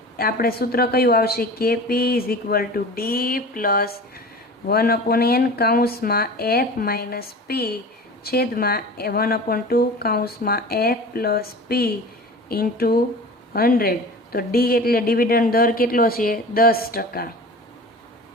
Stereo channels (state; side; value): normal; both; correlation 0.37